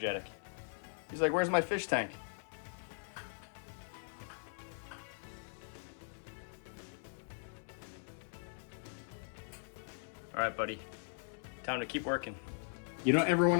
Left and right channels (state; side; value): silent; right; 51 dB below the other